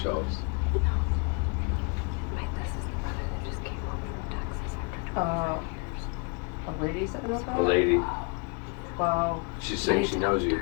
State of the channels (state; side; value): quieter; right; 35.0 dB